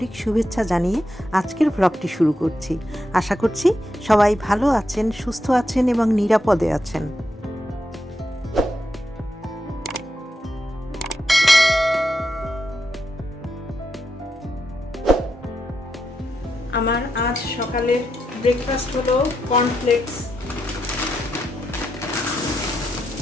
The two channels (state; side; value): normal; both; correlation 0.84